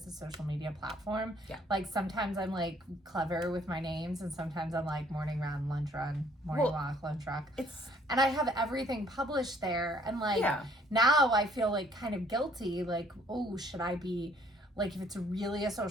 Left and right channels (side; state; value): both; normal; correlation 0.62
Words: a social media platform. Yeah. Sometimes I'm clever with my names, and sometimes I'm morning run, lunch run, morning walk, lunch walk. And I have everything published there. And now I feel kind of guilty. Oh, should I be, if it's really a